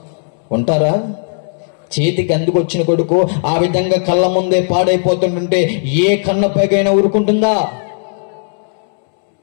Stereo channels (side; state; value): right; silent; 70 dB below the other